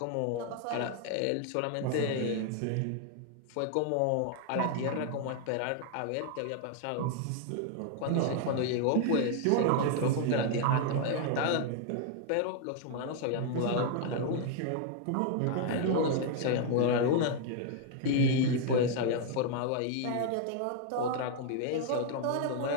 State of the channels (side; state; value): both; different; correlation 0.00